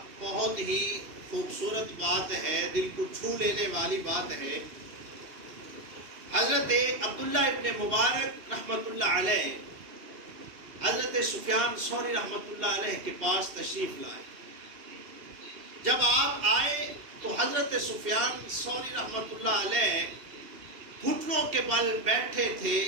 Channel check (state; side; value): late; left; 2.8 ms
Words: بہت ہی خوبصورت بات ہے، دل کو چھو لینے والی بات ہے۔ حضرت عبداللہ ابن مبارک رحمۃ اللہ علیہ حضرت سفیان ثوری رحمۃ اللہ علیہ کے پاس تشریف لائے۔ جب آپ آئے تو حضرت سفیان ثوری رحمۃ اللہ علیہ گھٹنوں کے بل بیٹھے تھے،